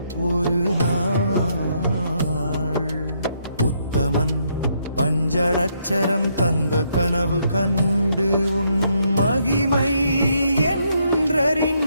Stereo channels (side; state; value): both; inverted; correlation -0.74